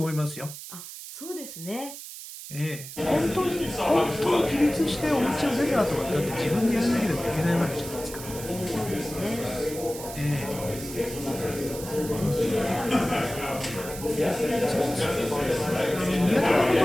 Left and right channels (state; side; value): noise; right; hiss, 12 dB below the sound